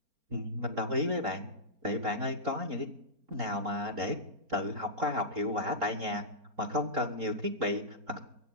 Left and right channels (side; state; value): left; late; 4.4 ms